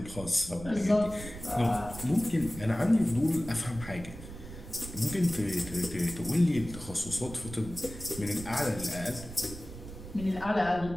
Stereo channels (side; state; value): right; noise; rumble, 12 dB below the sound